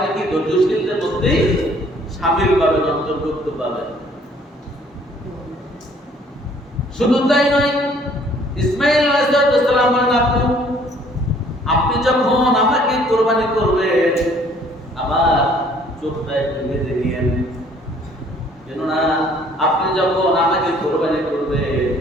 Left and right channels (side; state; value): both; normal; correlation 0.59